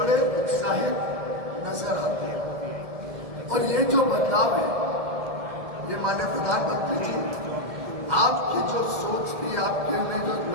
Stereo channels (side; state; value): left; late; 1.7 ms